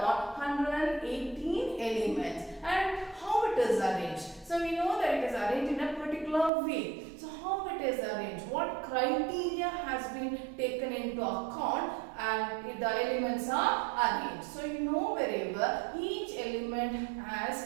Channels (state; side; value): drops out; left; at 6.5 s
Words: 118 elements. And how it is arranged? So we know that it is arranged in a particular way. So how it is arranged? What criteria has been taken into account and the elements are arranged? So you know very well, each element